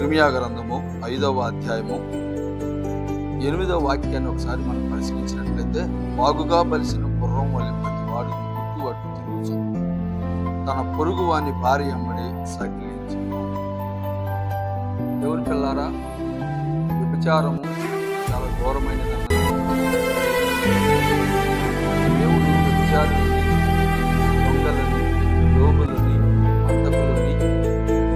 గ్రంథము 5వ అధ్యాయము 8వ వాక్యాన్ని ఒకసారి మనం పరిశీలించినట్లయితే, బాగుగా బలిసిన గుర్రం వలె ప్రతి వాడు గుట్టు అట్టు తిరుగుచు తన పొరుగు వాని భార్య అమ్మడి సకిలించు. దేవుని పిల్లారా, వ్యభిచారము చాలా ఘోరమైనదన్న దేవుడు వ్యభిచారులని, దొంగలని, లోబులని, మంతకులని,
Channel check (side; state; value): both; identical; correlation 1.00